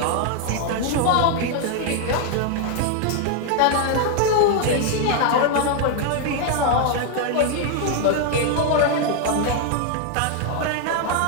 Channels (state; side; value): different; both; correlation 0.00